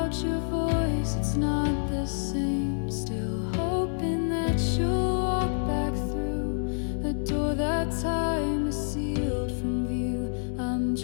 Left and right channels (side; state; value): right; silent; digital silence